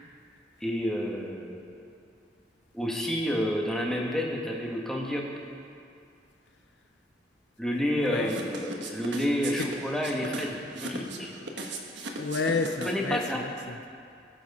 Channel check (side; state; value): both; normal; correlation 0.67